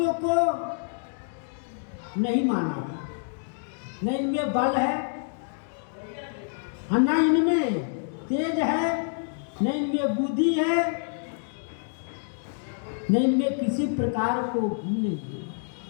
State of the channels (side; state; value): right; silent; digital silence